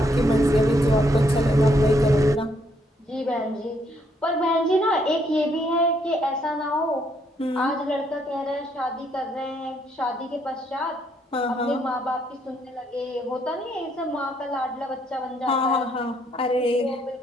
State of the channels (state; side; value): normal; both; correlation 0.72